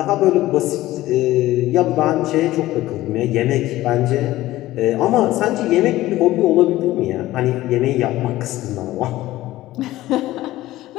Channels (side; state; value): right; quieter; 16.2 dB